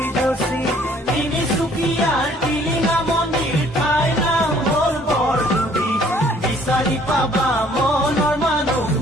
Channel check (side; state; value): both; normal; correlation 0.59